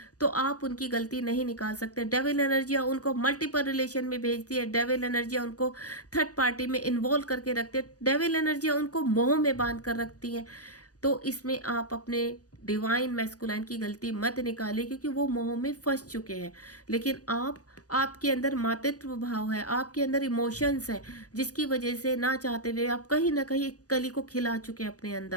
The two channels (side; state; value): right; late; 0.67 ms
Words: तो आप उनकी गलती नहीं निकाल सकते। डेविल एनर्जियाँ उनको मल्टीपल रिलेशन में भेजती है, डेविल एनर्जियाँ उनको थर्ड पार्टी में इन्वॉल्व करके रखती है, डेविल एनर्जियाँ उनको मोह में बांध कर रखती हैं। तो इसमें आप अपने डिवाइन मैस्कुलाइन की गलती मत निकालिए, क्योंकि वो मोह में फंस चुके हैं। लेकिन आपके अंदर मातृत्व भाव है, आपके अंदर इमोशंस है, जिसकी वजह से ना चाहते हुए आप कहीं ना कहीं एक कली को खिला चुके हैं अपने